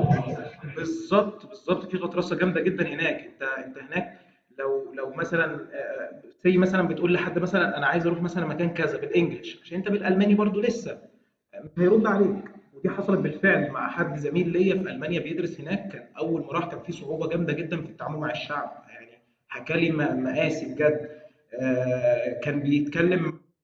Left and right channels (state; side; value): identical; both; correlation 1.00